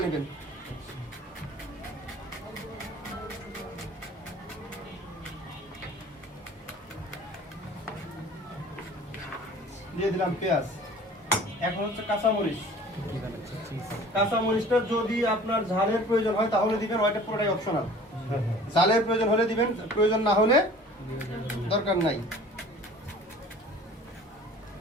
নেবেন। দিয়ে দিলাম পেঁয়াজ। এখন হচ্ছে কাঁচামরিচ। কাঁচামরিচটা যদি আপনার ঝালের প্রয়োজন হয় তাহলে দিবেন, ওইটা পুরোটাই অপশনাল। ঝালের প্রয়োজন হলে দিবেন, প্রয়োজন না হলে দরকার নাই।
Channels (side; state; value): both; normal; correlation 0.46